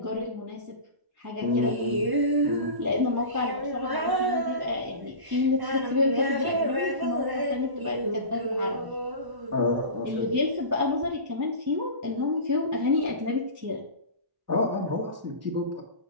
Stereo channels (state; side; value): late; left; 1.0 ms